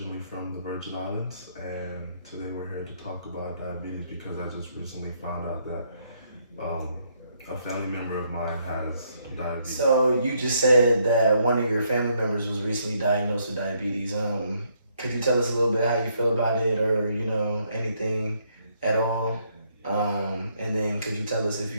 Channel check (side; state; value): both; inverted; correlation -0.72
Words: from the Virgin Islands, and today we're here to talk about diabetes because I just recently found out that a family member of mine has diabetes. So you just said that one of your family members was recently diagnosed with diabetes. Could you tell us a little bit how you feel about it, or anything at all? And then could you tell us if